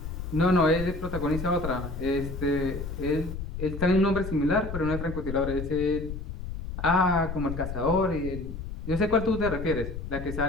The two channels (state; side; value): noise; left; rumble, 7 dB below the sound